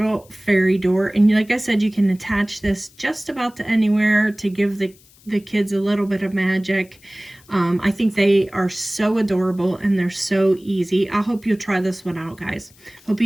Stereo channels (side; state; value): left; noise; hiss, 28 dB below the sound